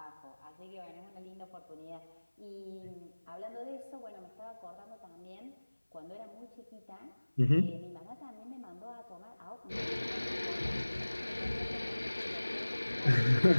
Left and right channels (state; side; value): inverted; both; correlation -1.00